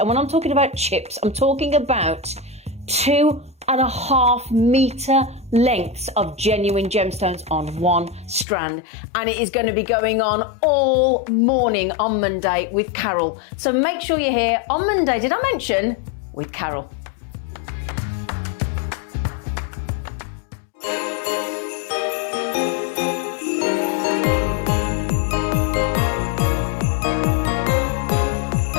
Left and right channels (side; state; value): right; drops out; at 8.5 s